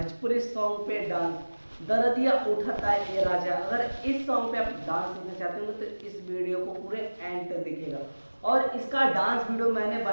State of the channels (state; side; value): inverted; both; correlation -1.00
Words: सॉन्ग पे डांस। दरदिया उठाता है ये राजा। अगर इस सॉन्ग पे आप डांस सीखना चाहते हो तो इस वीडियो को पूरे एंड तक देखिएगा। और इसका डांस वीडियो मैंने